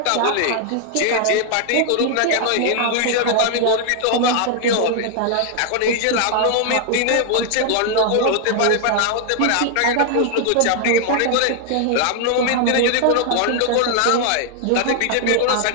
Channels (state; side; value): different; both; correlation 0.00